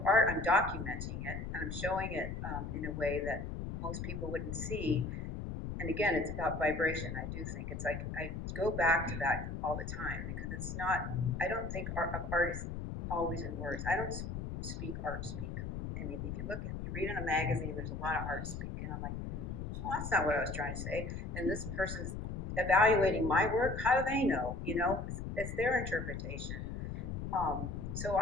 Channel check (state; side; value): noise; left; rumble, 5 dB below the sound